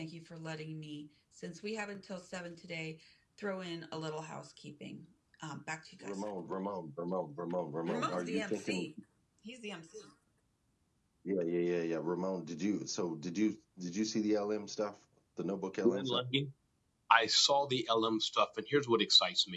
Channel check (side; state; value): both; identical; correlation 1.00